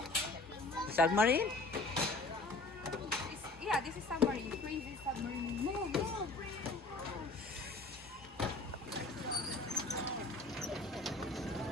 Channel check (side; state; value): right; quieter; 3.2 dB